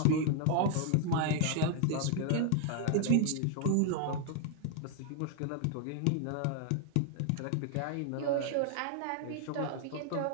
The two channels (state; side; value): different; both; correlation 0.00